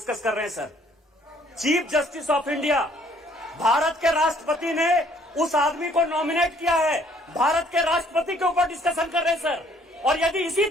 कर रहे हैं sir. Chief justice of India, Bharat के राष्ट्रपति ने उस आदमी को नॉमिनेट किया है. भारत के राष्ट्रपति के ऊपर डिस्कशन कर रहे हैं सर. और यदि इसी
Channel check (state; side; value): normal; both; correlation 0.61